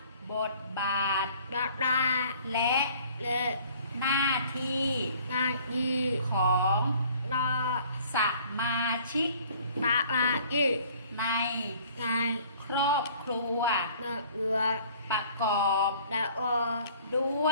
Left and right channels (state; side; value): inverted; both; correlation -0.53